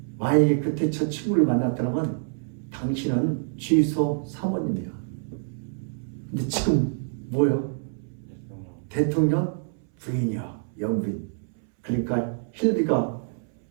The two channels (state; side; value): silent; left; 59 dB below the other